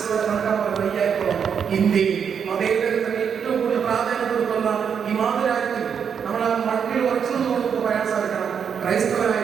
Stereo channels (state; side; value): quieter; left; 7.2 dB